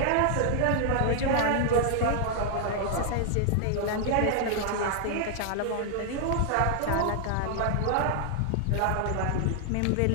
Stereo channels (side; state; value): both; different; correlation 0.00